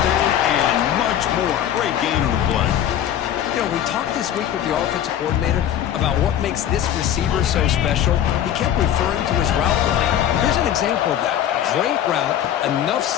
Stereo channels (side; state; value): right; quieter; 10.5 dB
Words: down and much more. Great gain on the play. You know, we talked this week with the offensive coordinator about what makes this receiver so special. He kept referring to his route running. Here's an example of that. Great route, enough